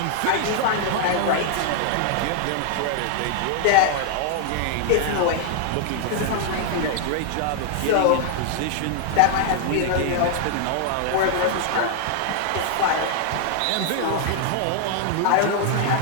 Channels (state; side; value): different; both; correlation 0.00